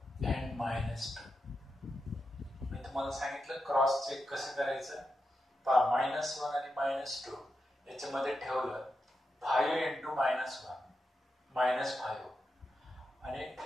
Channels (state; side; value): normal; both; correlation 0.88